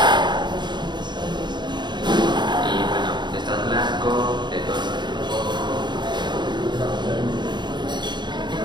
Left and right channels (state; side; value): late; left; 0.22 ms